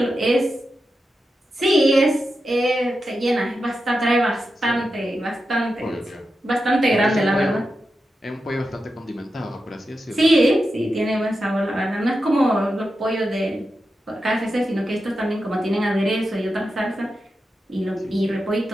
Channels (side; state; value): both; normal; correlation 0.89